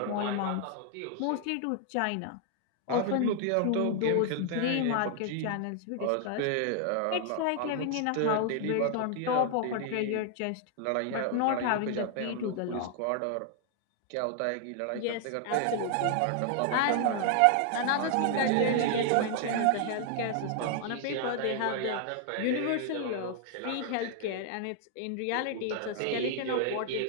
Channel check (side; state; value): both; different; correlation 0.00